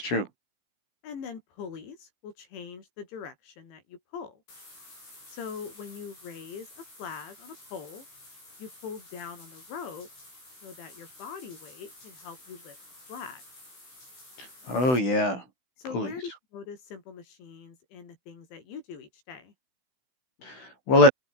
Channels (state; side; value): late; right; 16 ms